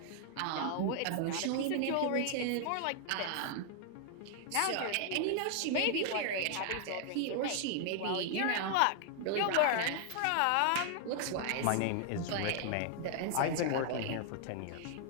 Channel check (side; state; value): both; different; correlation 0.00